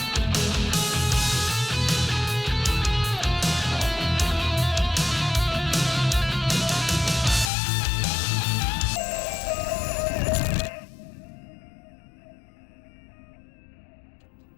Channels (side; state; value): right; drops out; at 7.5 s